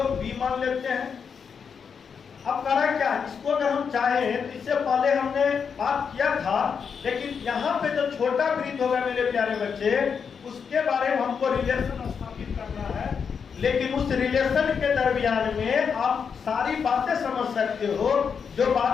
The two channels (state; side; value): quieter; right; 6.4 dB